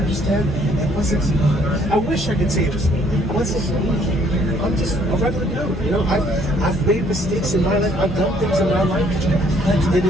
It wasn't me. I wish I could say it was me. It wasn't me. I'm just a regular dude. You know, I've made mistakes in my life. I've done things in my life. But it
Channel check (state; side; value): normal; both; correlation 0.63